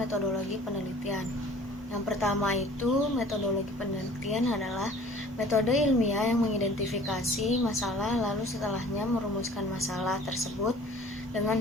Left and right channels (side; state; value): both; normal; correlation 0.48